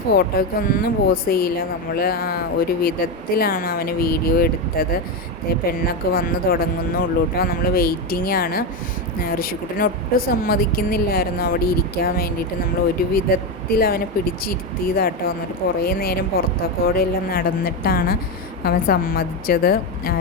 ഫോട്ടോയ്ക്കൊന്നും പോസ് ചെയ്യില്ല. നമ്മൾ ഒരു വിധത്തിലാണ് അവന് വീഡിയോ എടുത്തത്. പെണ്ണൊക്കെ വന്ന് തുടങ്ങുന്നുള്ളൂ കേട്ടോ. നമ്മൾ വെയിറ്റിംഗ് ആണ്. ഋഷിക്കുട്ടൻ ഒട്ടും സമ്മതിക്കുന്നില്ലായിരുന്നു അവിടെ ഇരിക്കാൻ വേണ്ടിയിട്ട്. നമ്മൾ ഒരു വിധത്തിൽ അവനെ പിടിച്ചിരുത്തിയതാട്ടോ. എന്നിട്ട് കുറേ നേരം പുറത്തൊക്കെ എല്ലാം നടന്നിട്ടാണ് അവൻ സമ്മതിച്ചത്.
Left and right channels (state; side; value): normal; both; correlation 0.11